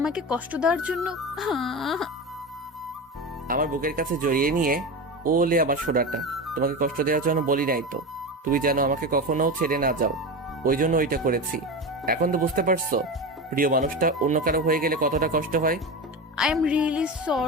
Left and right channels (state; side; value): normal; both; correlation 0.23